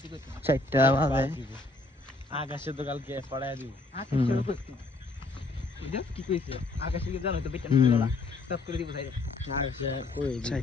4টা বাজে আকাশে তো কালকে পড়ায় দিব কি কইছে আকাশে কি জানো তো বেটা না সব করে দিব সাইড আকাশে কই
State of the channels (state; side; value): quieter; right; 3.1 dB